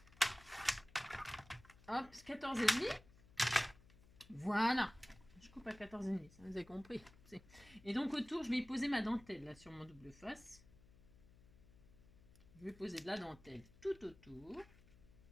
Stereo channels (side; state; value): left; noise; hum, 24 dB below the sound